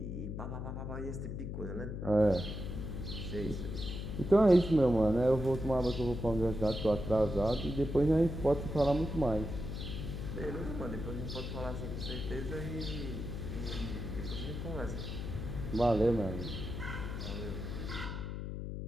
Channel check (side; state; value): left; noise; hum, 5 dB below the sound